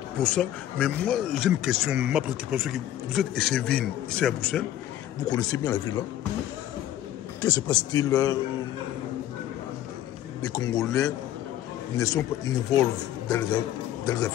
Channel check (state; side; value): quieter; right; 12.4 dB